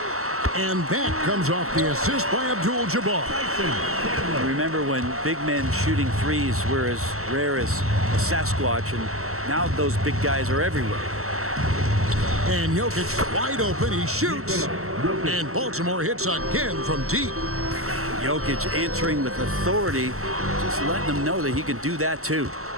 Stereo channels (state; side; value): late; left; 0.63 ms